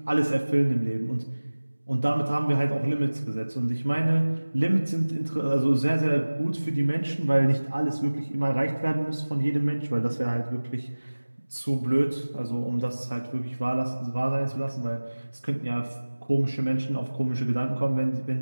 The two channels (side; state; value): both; inverted; correlation -1.00